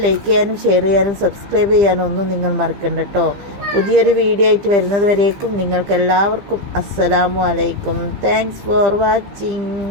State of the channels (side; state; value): left; late; 15 ms